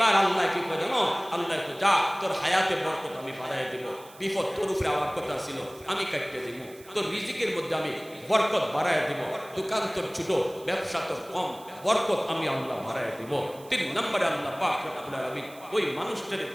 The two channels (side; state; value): right; noise; hiss, 22 dB below the sound